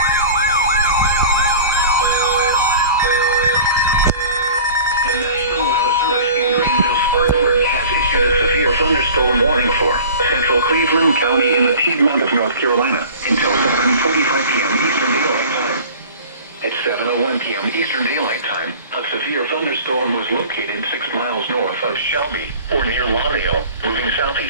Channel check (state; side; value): inverted; both; correlation -0.42